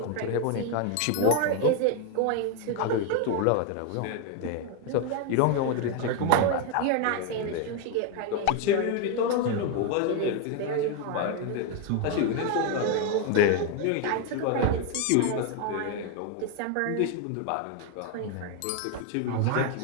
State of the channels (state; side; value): different; both; correlation 0.01